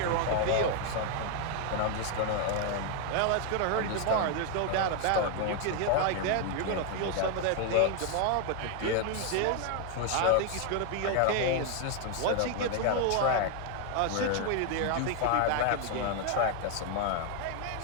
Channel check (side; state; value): both; different; correlation 0.01